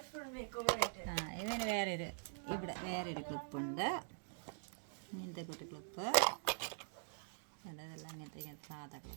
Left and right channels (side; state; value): left; silent; digital silence